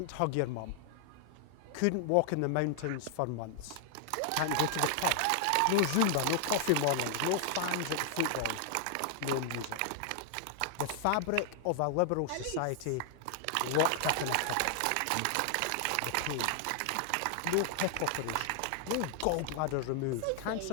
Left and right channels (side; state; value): both; different; correlation 0.00